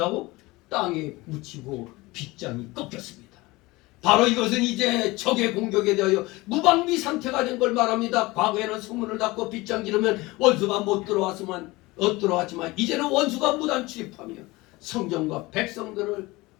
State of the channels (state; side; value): quieter; right; 21.5 dB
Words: 땅에 묻히고 빗장이 꺾였습니다. 바로 이것은 이제 적의 공격에 대하여 무방비 상태가 된 걸 말합니다. 과거에는 성문을 닫고 빗장 지르면 원수가 못 들어왔지만 이제는 원수가 무단 출입하며 성전과 백성들을